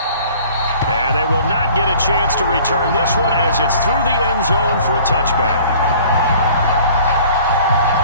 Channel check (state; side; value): inverted; both; correlation -0.50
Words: And they will not get a chance to return this one as it's through the end zone for a touchback.